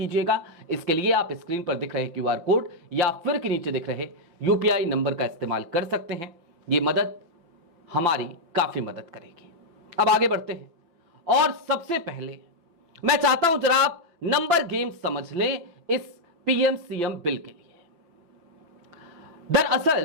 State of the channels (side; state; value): left; late; 5.9 ms